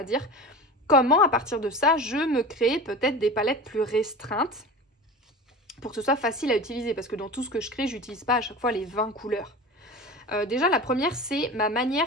dire. Comment à partir de ça, je me crée peut-être des palettes plus restreintes pour que ce soit facile à utiliser, parce que dans tout ce que je crée, j'utilise pas à chaque fois les 20 couleurs. Déjà, la première, c'est ma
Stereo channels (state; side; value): normal; both; correlation 0.33